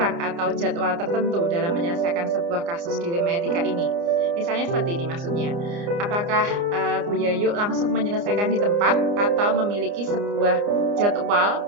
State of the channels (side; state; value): left; late; 29 ms